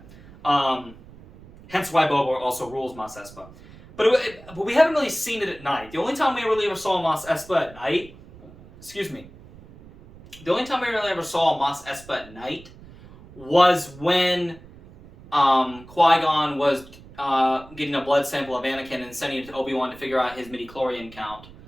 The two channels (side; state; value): right; noise; rumble, 21 dB below the sound